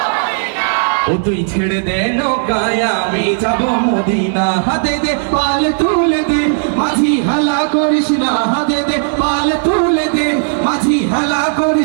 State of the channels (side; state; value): left; silent; digital silence